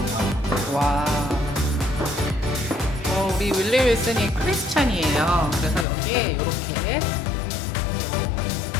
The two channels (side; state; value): right; drops out; at 5.9 s